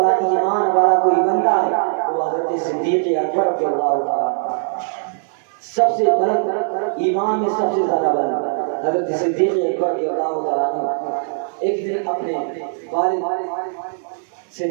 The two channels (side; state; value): left; silent; 65 dB below the other